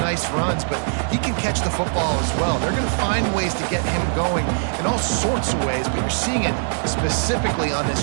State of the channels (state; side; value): silent; left; 65 dB below the other